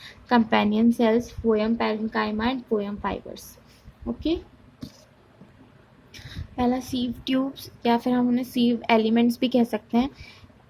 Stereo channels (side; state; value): both; identical; correlation 1.00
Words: companion cells, phloem parenchyma and phloem fibres. Okay, पहला सीव ट्यूब्स, या फिर हम उन्हें सीव एलिमेंट्स भी कह सकते हैं।